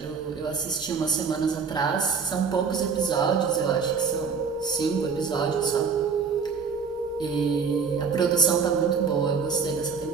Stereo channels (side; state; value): left; quieter; 5.6 dB